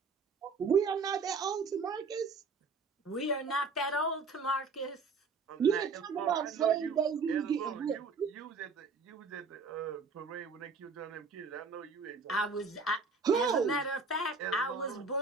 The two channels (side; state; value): left; quieter; 4.5 dB